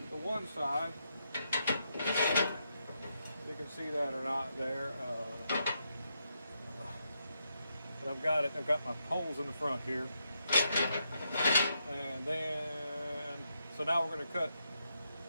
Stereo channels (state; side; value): inverted; both; correlation -0.81